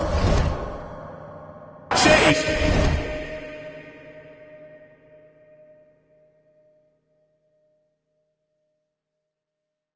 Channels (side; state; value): both; identical; correlation 1.00